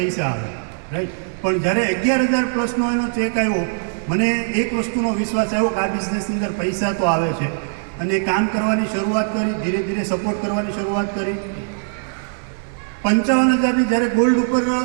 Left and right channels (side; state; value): left; silent; digital silence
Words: આવે, રાઈટ. પણ જ્યારે 11,000 પ્લસનો એનો ચેક આવ્યો, મને એક વસ્તુનો વિશ્વાસ આવ્યો કે આ બિઝનેસની અંદર પૈસા તો આવે છે. અને કામ કરવાની શરૂઆત કરી, ધીરે ધીરે સપોર્ટ કરવાની શરૂઆત કરી. 55,000ની જ્યારે ગોલ્ડ ઉપર